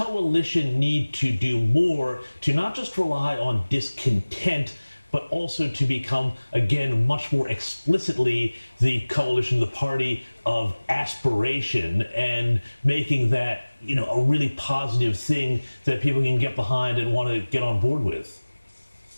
need to do more to not just rely on discontent, but also to become, again, much more explicitly the coalition, the party of aspiration, and making that, a really positive thing that people can get behind and want to get on board with?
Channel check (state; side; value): inverted; both; correlation -1.00